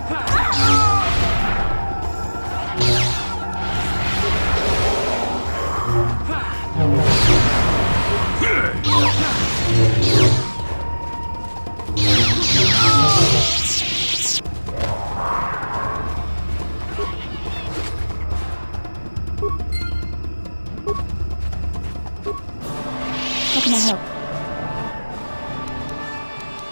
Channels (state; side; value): inverted; both; correlation -1.00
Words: How can I help?